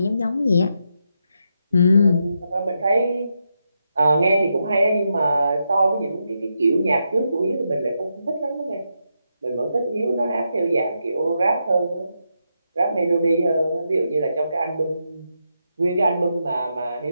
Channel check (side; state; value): both; inverted; correlation -0.84